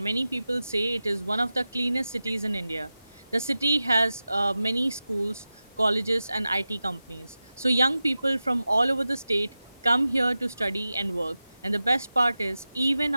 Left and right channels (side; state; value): both; inverted; correlation -0.94